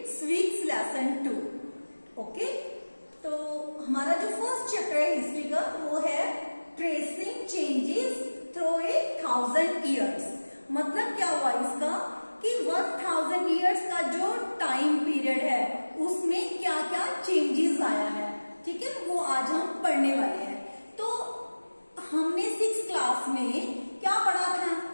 civics lesson 2. Okay? तो हमारा जो फर्स्ट चैप्टर है हिस्ट्री का वो है ट्रेसिंग चेंजेस थ्रू 1000 years. मतलब क्या हुआ इसका कि 1000 years का जो टाइम पीरियड है उसमें क्या क्या चेंजेस आया है, ठीक है, वो आज हम पढ़ने वाले हैं. तो हमने 6th क्लास में क्या पढ़ा था?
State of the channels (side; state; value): both; inverted; correlation -1.00